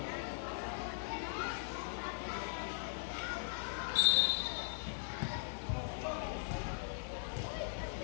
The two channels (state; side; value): silent; right; digital silence